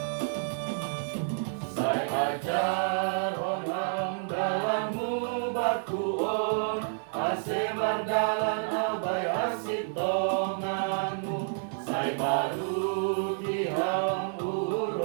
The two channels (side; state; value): left; silent; digital silence